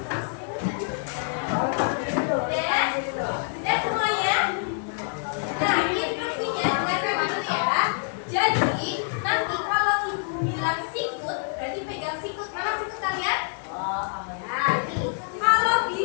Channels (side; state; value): right; silent; 60 dB below the other